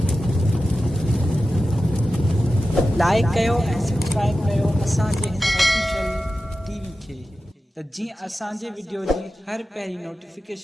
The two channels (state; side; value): normal; both; correlation 0.93